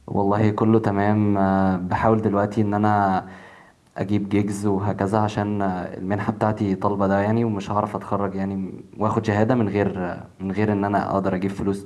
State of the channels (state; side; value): identical; both; correlation 1.00